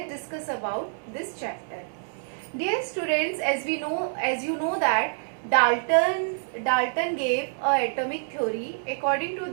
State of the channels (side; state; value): left; silent; 60 dB below the other